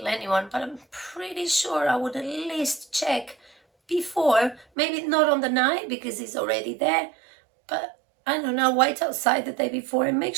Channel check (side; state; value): left; drops out; at 4.7 s